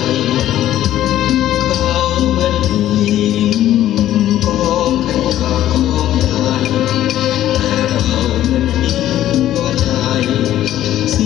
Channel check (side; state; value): right; quieter; 12.8 dB